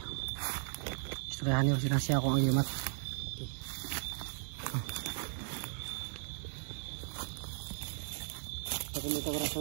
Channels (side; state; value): left; silent; 53 dB below the other